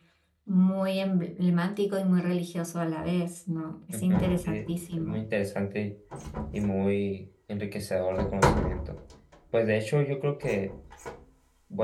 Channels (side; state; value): both; identical; correlation 1.00